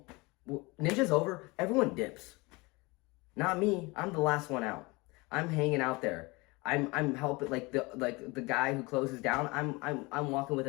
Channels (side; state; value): right; quieter; 24.9 dB